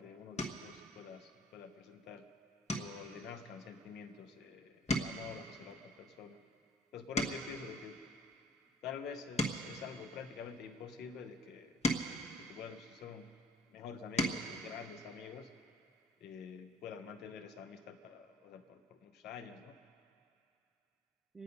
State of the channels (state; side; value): normal; both; correlation 0.53